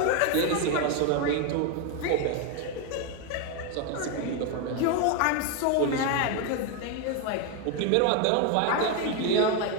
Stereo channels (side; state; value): both; different; correlation 0.01